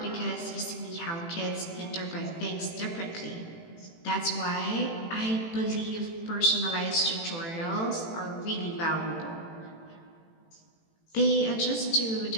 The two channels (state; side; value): late; right; 18 ms